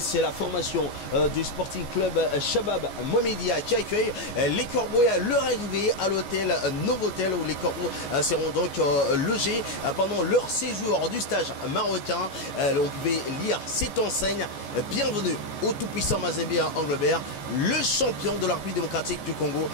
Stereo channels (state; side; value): late; right; 14 ms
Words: la formation du Sporting Club Shabab Mohamedia qui accueille les Corbeaux à leur arrivée à l'hôtel Novotel, où les Corbeaux seront donc logés pendant leur séjour du stage marocain. On pouvait lire cette enseigne: bienvenue au tout-puissant Mazembe Anglebert, le champion de la République démocratique du Congo,